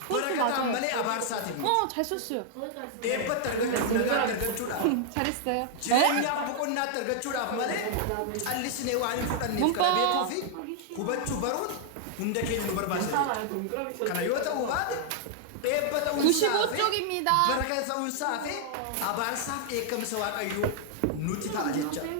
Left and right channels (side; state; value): both; different; correlation -0.01